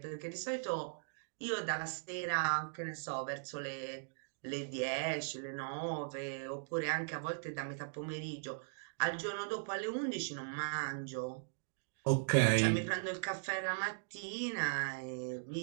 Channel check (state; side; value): silent; left; digital silence